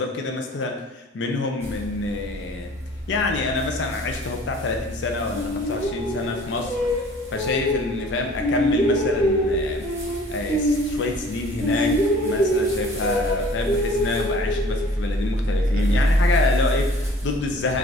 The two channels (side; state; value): both; normal; correlation 0.50